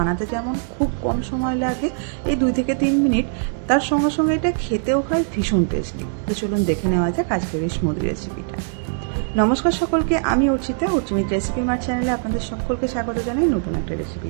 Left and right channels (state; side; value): silent; left; digital silence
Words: যেমন খুব কম সময় লাগে, এই 2 থেকে 3 মিনিট, তার সঙ্গে সঙ্গে এটা খেতেও হয় ভীষণ টেস্টি। তো চলুন দেখে নেওয়া যাক আজকের এই স্মুদি রেসিপিটা। নমস্কার সকলকে, আমি অর্চিতা, অর্চিমিত রেসিপি মার চ্যানেলে আপনাদের সকলকে স্বাগত জানাই নতুন একটা